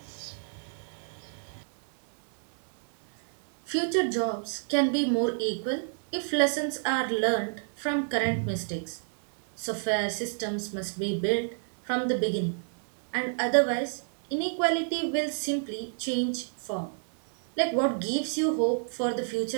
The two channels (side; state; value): left; silent; digital silence